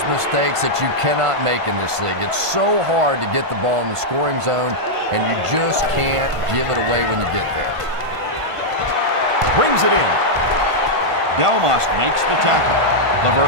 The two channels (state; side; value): late; left; 1.5 ms